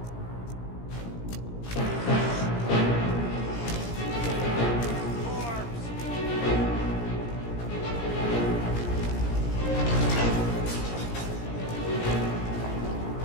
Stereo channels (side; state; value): right; late; 17 ms